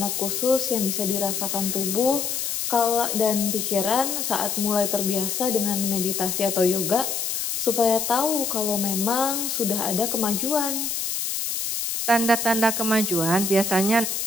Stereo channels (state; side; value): noise; left; hiss, 2 dB below the sound